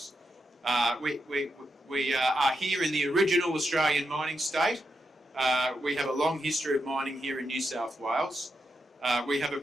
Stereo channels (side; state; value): both; normal; correlation 0.84